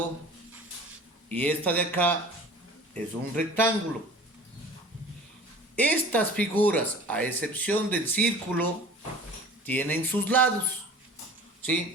y esta de acá es un rectángulo. Estas figuras, a excepción del círculo, tienen sus lados.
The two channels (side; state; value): both; normal; correlation 0.43